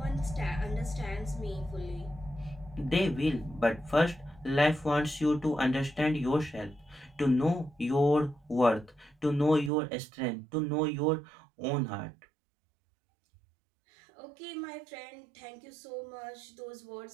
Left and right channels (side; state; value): left; drops out; at 9.7 s